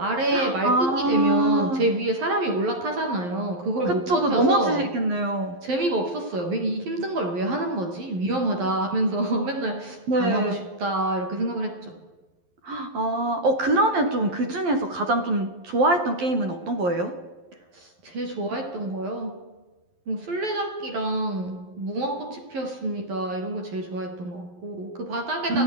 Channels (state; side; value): late; left; 11 ms